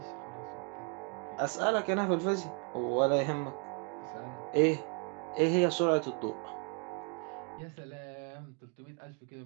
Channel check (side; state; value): left; quieter; 39.3 dB